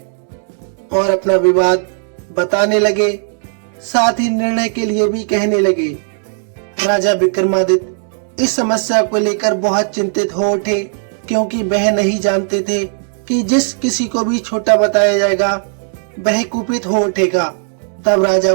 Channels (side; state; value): left; silent; digital silence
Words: और अपना विवाद बताने लगे, साथ ही निर्णय के लिए भी कहने लगे। राजा विक्रमादित्य इस समस्या को लेकर बहुत चिंतित हो उठे, क्योंकि वह नहीं जानते थे कि जिस किसी को भी छोटा बताया जाएगा वह कुपित हो उठेगा। तब राजा